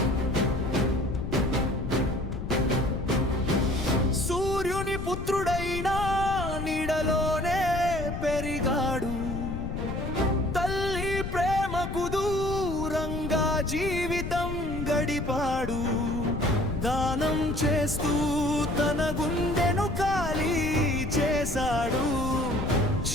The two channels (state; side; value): noise; left; rumble, 5 dB below the sound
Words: సూర్యుని పుత్రుడైనా నీడలోనే పెరిగాడు. తల్లి ప్రేమకు దూరంగా జీవితం గడిపాడు. దానం చేస్తూ తన గుండెను ఖాళీ చేశాడు.